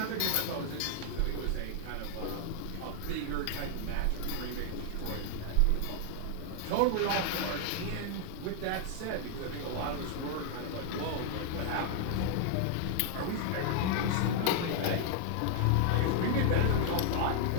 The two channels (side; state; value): both; different; correlation 0.00